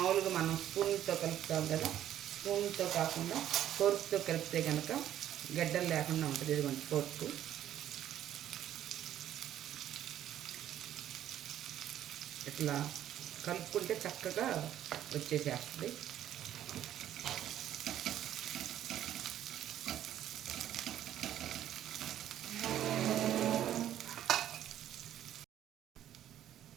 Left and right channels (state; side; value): quieter; left; 11.5 dB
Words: మనం స్పూన్తో కలుపుతాం కదా, స్పూన్తో కాకుండా ఫోర్క్తో కలిపితే కనుక గడ్డలు లేకుండా ఉంటుంది. ఇదిగోండి ఫోర్క్. ఇట్లా కలుపుకుంటే చక్కగా వచ్చేసేస్తుంది.